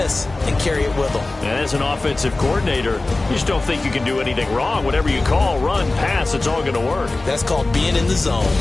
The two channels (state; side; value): quieter; right; 3.1 dB